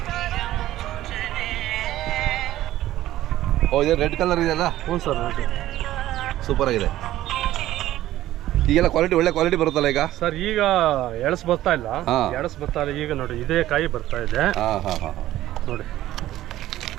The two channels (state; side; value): quieter; left; 14.4 dB